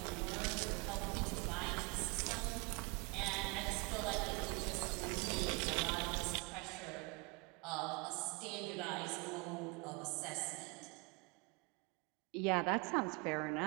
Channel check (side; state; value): left; quieter; 28.9 dB